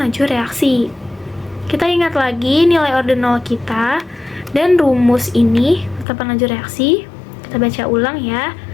laju reaksi. Kita ingat lagi nilai order 0 kita dan rumus ini, tetapan laju reaksi. Kita baca ulang ya.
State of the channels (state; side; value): drops out; right; at 6.1 s